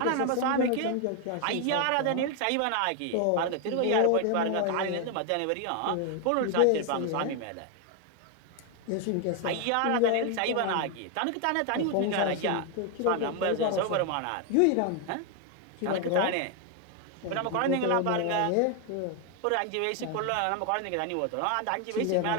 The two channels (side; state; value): both; different; correlation 0.01